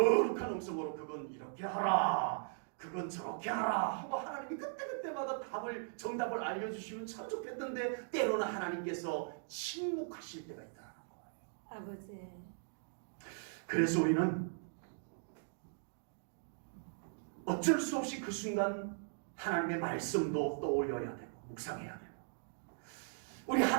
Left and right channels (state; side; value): silent; left; digital silence